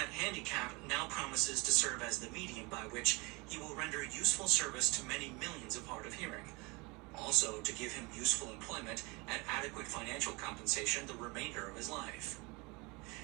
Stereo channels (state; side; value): quieter; left; 26.8 dB